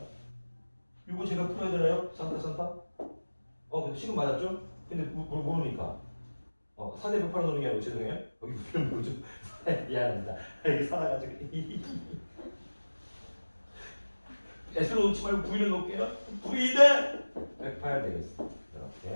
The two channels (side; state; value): both; inverted; correlation -1.00